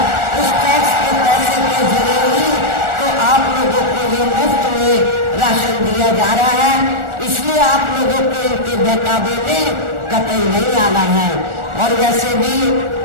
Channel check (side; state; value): left; late; 1.4 ms